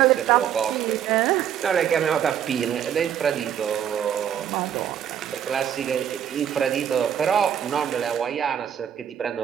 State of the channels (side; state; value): left; quieter; 9.3 dB